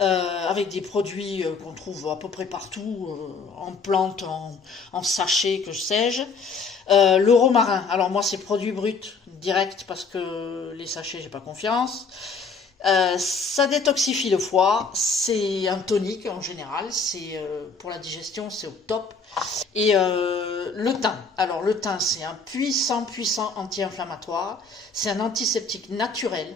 des produits qu'on trouve à peu près partout, en plantes, en sachets, que sais-je. Le romarin, alors moi c'est produit brut, direct, parce que les sachets j'ai pas confiance. Ça détoxifie le foie, c'est un tonique en général, c'est pour la digestion c'est au top. Et le thym, alors le thym c'est un puissant anti-inflammatoire, c'est un antiseptique naturel,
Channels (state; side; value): quieter; right; 4.4 dB